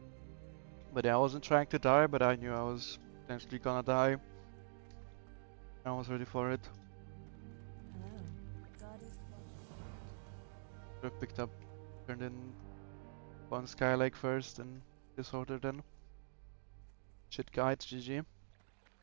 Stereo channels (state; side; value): silent; left; digital silence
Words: But yeah, I wasn't trying to die, but I knew I was potentially gonna die. I was ready for it. Hello. God is watching. Should have picked up, turned in one Skylake first and disorder then. Shit guide, GG.